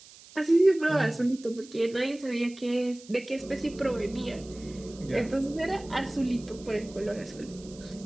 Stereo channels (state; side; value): noise; right; hiss, 21 dB below the sound